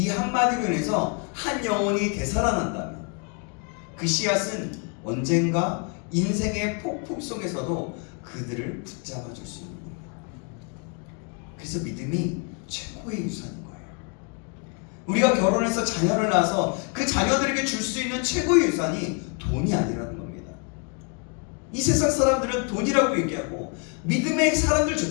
한마디로 인해서 한 영혼이 되살아난다면 그 씨앗은 언젠가 인생의 폭풍 속에서도 그들을 붙잡아 줄 수 있는 겁니다. 그래서 믿음이 최고의 유산인 거예요. 우리가 결혼해서 자녀를 낳아서 그 자녀들에게 줄 수 있는 최고의 유산이 돈이 아니라는 겁니다. 이 세상 사람들은 돈이라고 얘기하고 믿음의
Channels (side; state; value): right; quieter; 36.4 dB